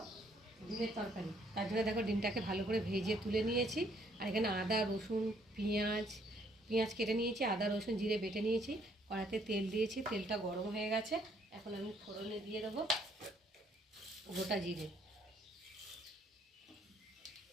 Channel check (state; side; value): normal; both; correlation 0.66